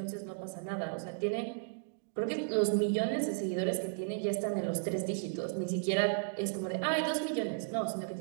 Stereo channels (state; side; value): silent; left; digital silence